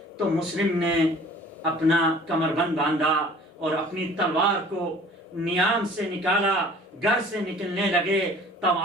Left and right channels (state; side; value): normal; both; correlation 0.49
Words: تو مسلم نے اپنا کمربند باندھا اور اپنی تلوار کو نیام سے نکالا، گھر سے نکلنے لگے۔